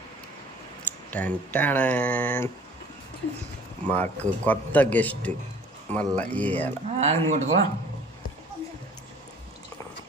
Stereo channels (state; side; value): normal; both; correlation 0.51